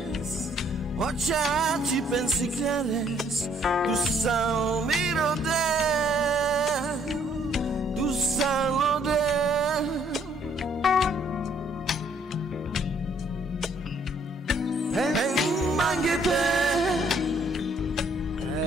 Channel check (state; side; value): normal; both; correlation 0.65